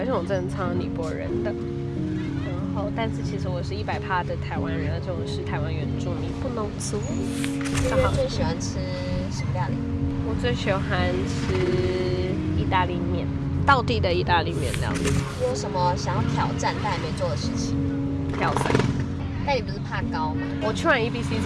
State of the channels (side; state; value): both; identical; correlation 1.00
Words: 且我真的超尼泊尔人的。然后，但是其实我是100%的台湾人，而且我是台湾原住民，不农族。月月最喜欢吃什么料理？我最喜欢吃意大利面，道地的意大利面料理。你有什么想要挑战但还没做的事情？跳伞。但你不是怕高吗？我去完 EBC